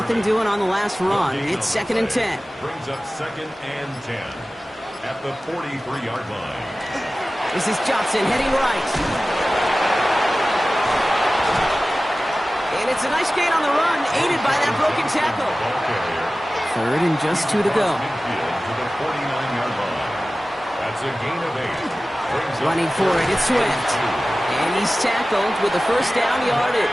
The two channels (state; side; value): normal; both; correlation 0.96